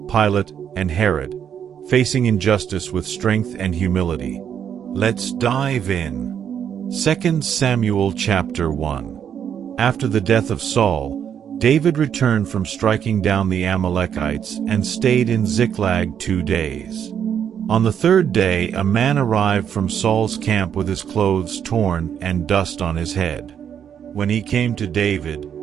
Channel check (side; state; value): left; quieter; 8.5 dB